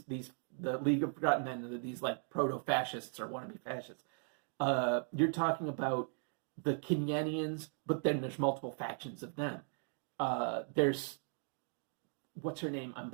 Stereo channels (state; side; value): silent; left; 53 dB below the other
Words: League of Forgotten Men, these like proto-fascists or wannabe fascists. You're talking about the Kenyanians, but then there's multiple factions of them. There's, what's her name? I'm